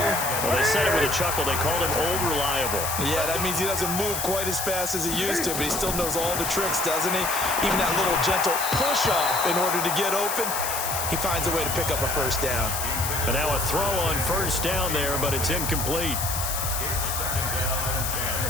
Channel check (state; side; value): noise; left; hiss, 3 dB below the sound